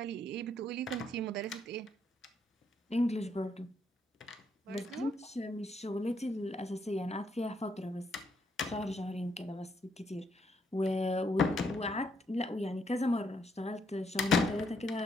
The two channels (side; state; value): both; normal; correlation 0.74